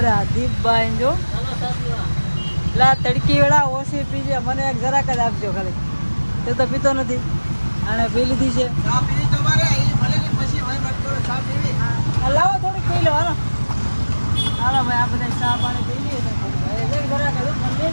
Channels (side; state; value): both; inverted; correlation -1.00